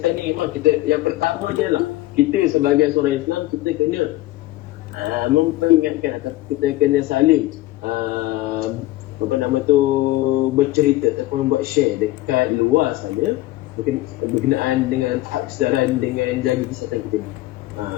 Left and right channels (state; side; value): quieter; right; 17.3 dB